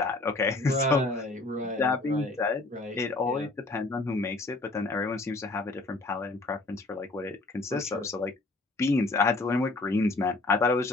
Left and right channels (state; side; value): quieter; right; 3.1 dB